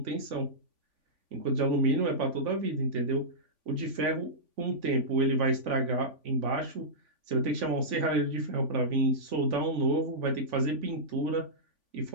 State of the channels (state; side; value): late; left; 3.5 ms